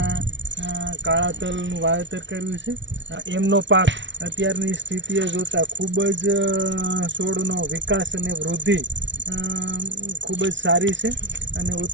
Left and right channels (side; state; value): left; late; 0.54 ms